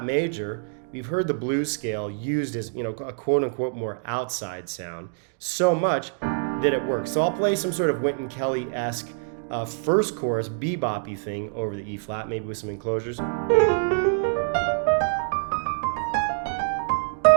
major, we've heard the blues scale used as, a quote unquote more outside sound so much that it works. So I'll play some sort of Wynton Kelly-esque first chorus bebop-y thing over the E flat, maybe with some enclosures.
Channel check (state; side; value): silent; left; digital silence